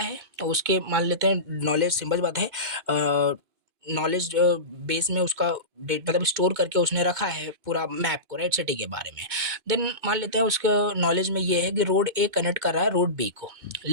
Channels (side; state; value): left; late; 2.1 ms